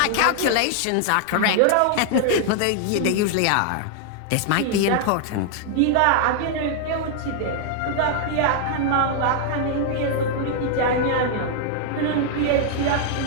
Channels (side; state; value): both; different; correlation 0.00